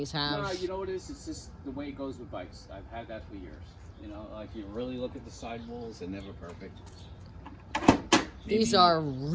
have. No, you know what it is? It's just the way it goes with bikes. I've had that for years. You know, like you really look at the sidewalls, they're never perfect. These are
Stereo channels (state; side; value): identical; both; correlation 1.00